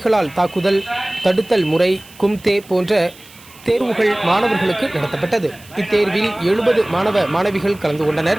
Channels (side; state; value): right; noise; hiss, 23 dB below the sound